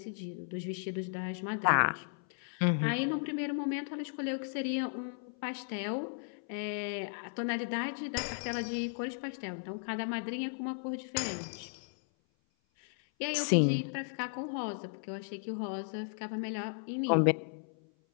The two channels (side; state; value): right; silent; 54 dB below the other